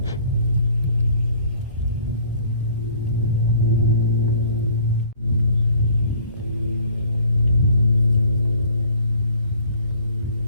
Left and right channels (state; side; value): inverted; both; correlation -0.54